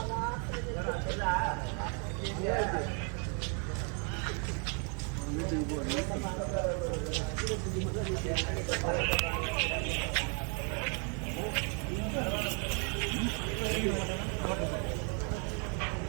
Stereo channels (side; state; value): left; quieter; 38.6 dB